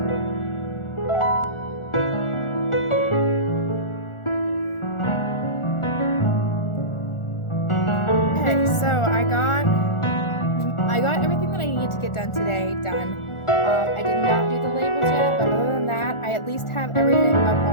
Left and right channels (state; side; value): late; right; 1.4 ms